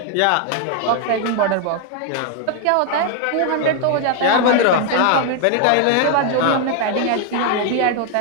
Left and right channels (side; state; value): both; different; correlation 0.00